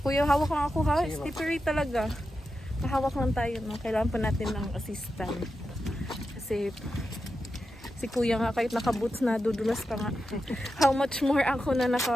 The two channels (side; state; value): both; normal; correlation 0.89